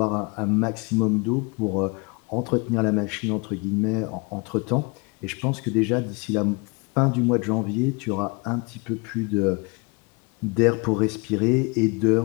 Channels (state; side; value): quieter; right; 30.3 dB